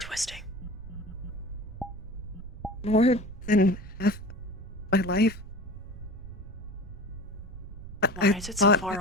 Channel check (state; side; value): noise; right; rumble, 13 dB below the sound